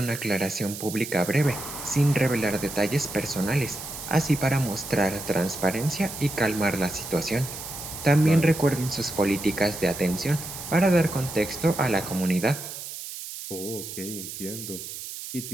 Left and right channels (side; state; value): right; noise; hiss, 9 dB below the sound